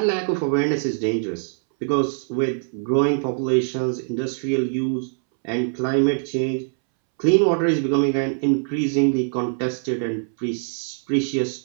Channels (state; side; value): silent; left; 64 dB below the other